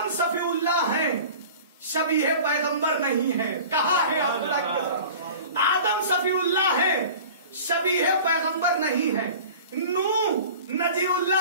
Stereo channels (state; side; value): inverted; both; correlation -0.41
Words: صفی اللہ ہیں، شبیہ پیغمبر نہیں ہے۔ کہا ہے آدم صفی اللہ ہے، شبیہ پیغمبر نہیں ہے۔ نوح نجی